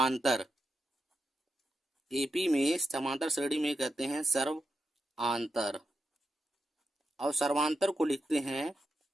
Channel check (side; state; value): both; normal; correlation 0.87